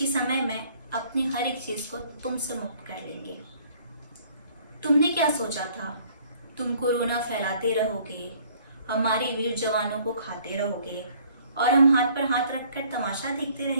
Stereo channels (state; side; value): inverted; both; correlation -0.58